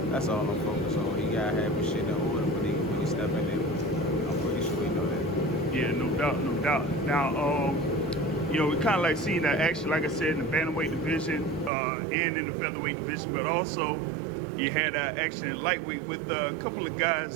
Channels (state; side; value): drops out; left; at 11.7 s